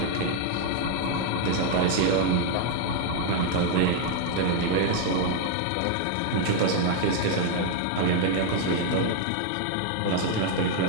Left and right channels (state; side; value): different; both; correlation 0.00